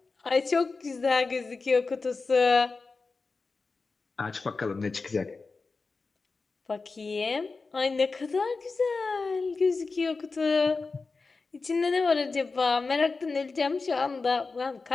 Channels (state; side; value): quieter; right; 4.1 dB